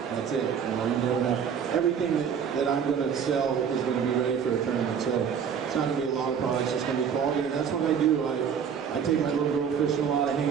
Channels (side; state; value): left; quieter; 7.4 dB